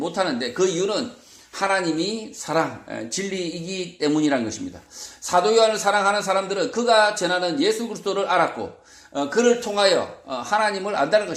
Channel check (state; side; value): identical; both; correlation 1.00